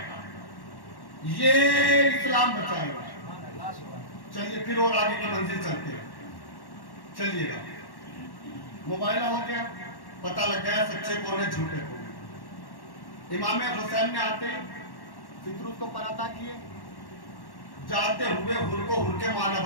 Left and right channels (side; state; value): right; late; 1.1 ms